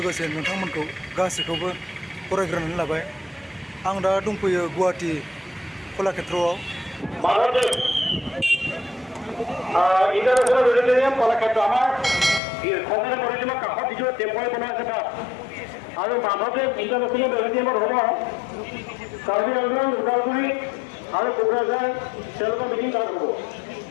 नोंथांमोनखौ गासैखौबो बरायग्रोनानै लाबाय। आं दा दंफैयो गुवाहाटी कलाक्षेत्रआव। ইন্টাৰনেশ্যনেল অডিটৰিয়াম কলাক্ষেত্ৰ আমাৰ সংসদে পৰিচালক কাষত যিটো টেম্প'ৰাৰী বনাই আছে তাত আৰু মাধৱদেৱ ইন্টাৰনেশ্যনেল অডিটৰিয়ামত হ'ব কাৰ্বি আংলং, ওদালগুৰি আৰু কোকৰাঝাৰ তেওঁলোকৰ মিটিং তাত হ'ব।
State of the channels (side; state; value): right; drops out; at 12.4 s